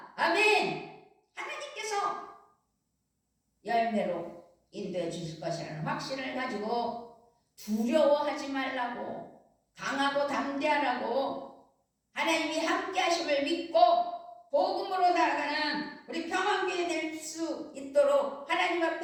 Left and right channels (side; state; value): both; identical; correlation 1.00